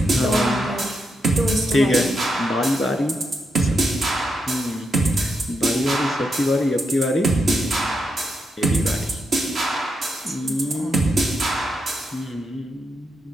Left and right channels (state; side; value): normal; both; correlation 0.83